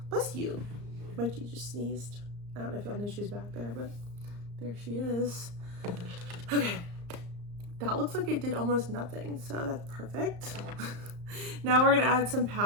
bless you. Mikey just sneezed. I don't know if y'all know she's back there, but there she is. Okay. That looks like it did almost nothing, so that's perfect. Now we're gonna add some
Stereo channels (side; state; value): left; late; 34 ms